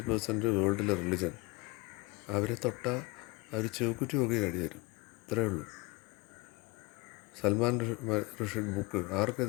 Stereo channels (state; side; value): quieter; right; 24.3 dB